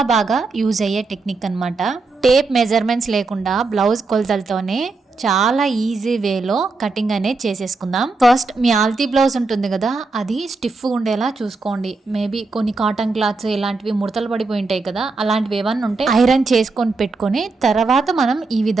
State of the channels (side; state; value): left; quieter; 3.8 dB